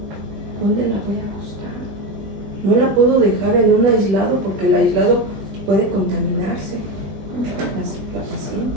¿dónde la voy a acostar? No la puedo dejar en un aislado porque el aislado puede contaminarse la paciente.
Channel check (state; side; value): late; left; 20 ms